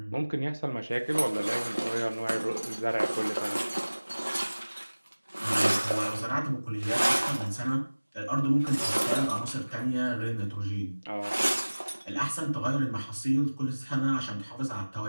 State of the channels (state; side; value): inverted; both; correlation -1.00